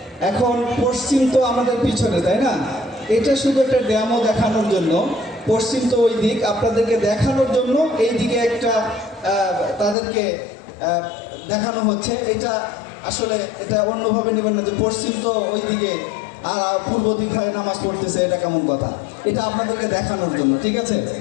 এখন পশ্চিম তো আমাদের পিছনে, তাই না? এটা শুধু একটা ডেমো দেখানোর জন্য, পশ্চিম তো ওই দিক, আপনাদেরকে দেখানোর জন্য এই দিকে একটা তাদেরকে দেখানো হচ্ছে। এটা আসলে এটা অন্যভাবে নেবেন না যে পশ্চিম তো ওই দিকে আর পূর্ব দিকে নামাজ পড়তেছে, এটা কেমন কথা? এটা আপনাদেরকে দেখানোর জন্য, ঠিক আছে?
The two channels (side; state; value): right; drops out; at 10.0 s